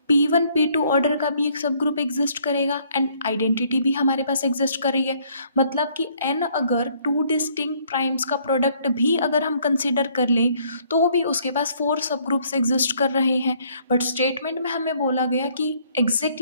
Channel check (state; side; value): inverted; both; correlation -0.64